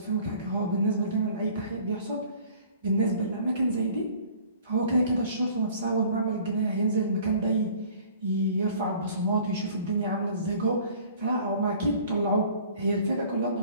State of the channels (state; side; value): inverted; both; correlation -0.51